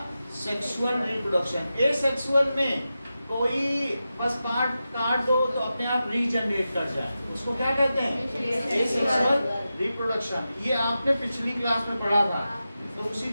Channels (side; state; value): both; inverted; correlation -0.91